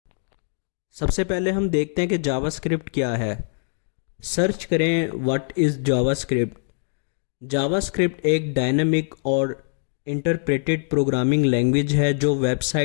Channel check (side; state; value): right; silent; digital silence